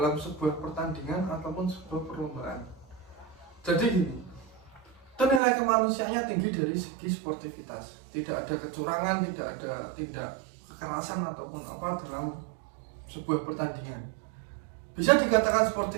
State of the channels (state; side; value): drops out; left; at 5.4 s